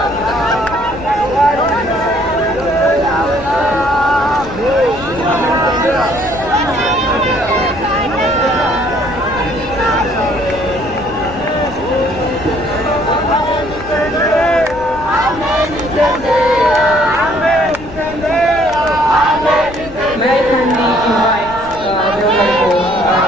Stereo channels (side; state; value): left; noise; rumble, 16 dB below the sound